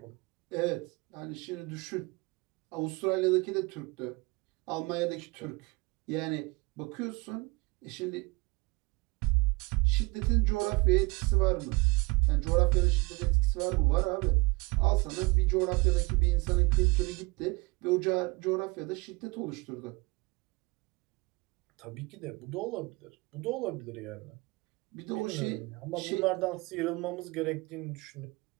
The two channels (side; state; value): left; quieter; 24.7 dB